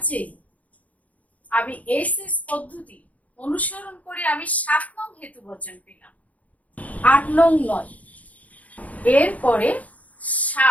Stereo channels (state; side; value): late; right; 0.071 ms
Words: এ আমি এসএস পদ্ধতি অনুসরণ করে আমি 7 নং হেতু বচন পেলাম, 8 নং নয়। এরপরে